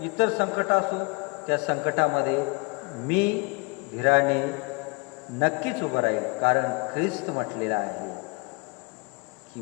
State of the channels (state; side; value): quieter; right; 30.1 dB